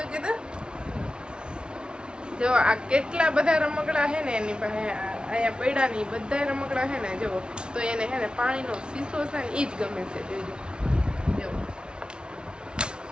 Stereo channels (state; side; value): late; left; 0.055 ms